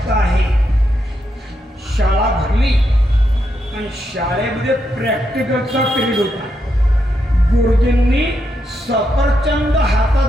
आहे. शाळा भरली आणि शाळेमध्ये प्रॅक्टिकलचा पिरियड होता. गुरुजींनी सफरचंद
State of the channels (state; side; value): normal; both; correlation 0.82